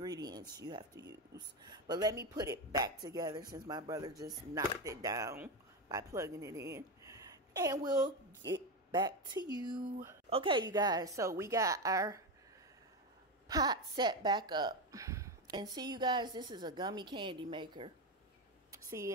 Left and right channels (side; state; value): both; normal; correlation 0.14